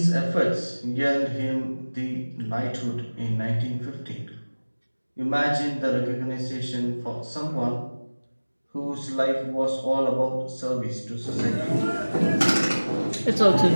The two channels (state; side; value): inverted; both; correlation -1.00